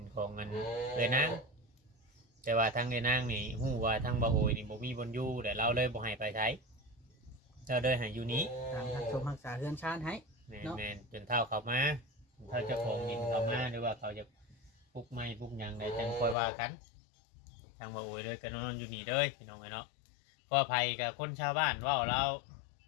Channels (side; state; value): right; drops out; at 16.4 s